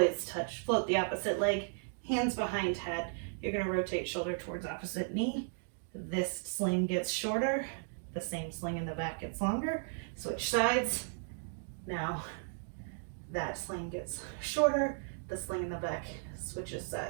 touch, float the opposite leg, hands behind head. You're gonna rotate shoulder towards opposite knee. This sling gets shorter, the same sling in the back gets longer. Switch sides. Now that sling gets shorter, the sling in the back switches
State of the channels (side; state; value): left; silent; digital silence